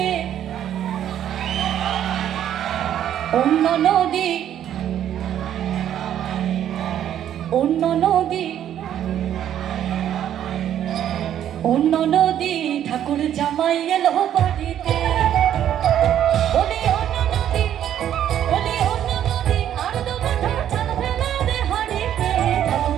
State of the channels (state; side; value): quieter; left; 10.6 dB